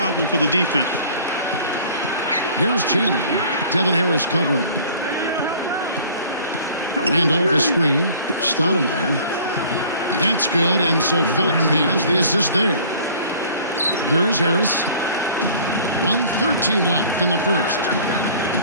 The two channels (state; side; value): inverted; both; correlation -0.49